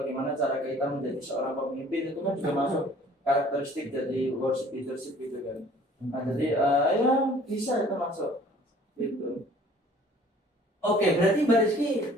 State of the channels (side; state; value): both; normal; correlation 0.53